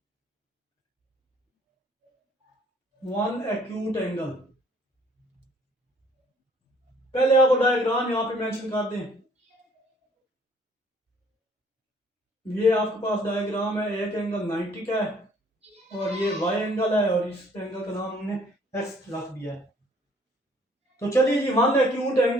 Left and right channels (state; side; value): normal; both; correlation 0.59